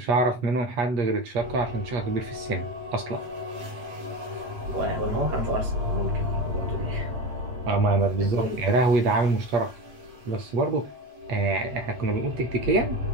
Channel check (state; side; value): late; left; 8.3 ms